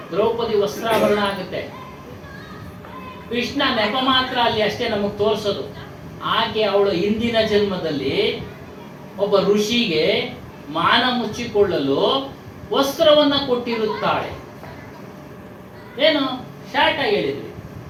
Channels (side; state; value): both; identical; correlation 1.00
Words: ದ್ರೌಪದಿ ವಸ್ತ್ರಾಭರಣ ಆಗುತ್ತೆ, ಕೃಷ್ಣ ನೆಪ ಮಾತ್ರ ಅಲ್ಲಿ ಅಷ್ಟೇ ನಮಗೆ ತೋರಿಸೋದು. ಆಕೆ ಅವಳು ಹಿಂದಿನ ಜನ್ಮದಲ್ಲಿ ಒಬ್ಬ ಋಷಿಗೆ ಮಾನ ಮುಚ್ಚಿಕೊಳ್ಳಲು ವಸ್ತ್ರವನ್ನ ಕೊಟ್ಟಿರುತ್ತಾಳೆ. ಏನು ಶಾರ್ಟ್ ಆಗಿ ಹೇಳಿದ್ವಿ,